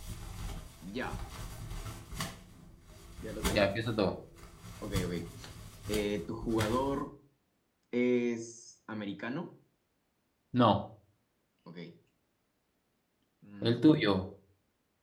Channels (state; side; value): identical; both; correlation 1.00